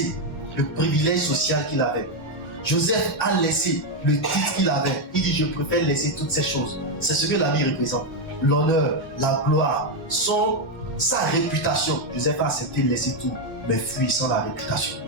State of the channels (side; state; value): both; normal; correlation 0.04